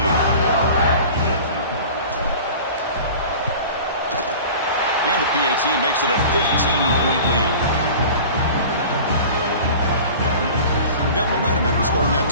And the PAT makes it a 15-point lead. Got momentum after scoring that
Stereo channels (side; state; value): both; inverted; correlation -0.40